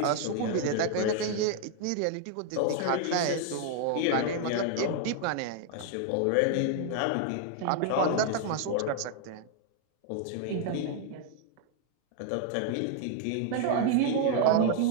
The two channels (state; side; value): different; both; correlation 0.00